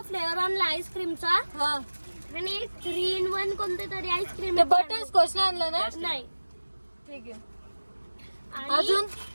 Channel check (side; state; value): both; inverted; correlation -1.00